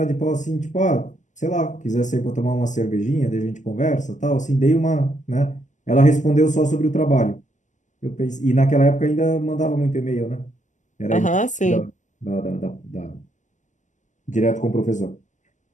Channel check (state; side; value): late; right; 0.36 ms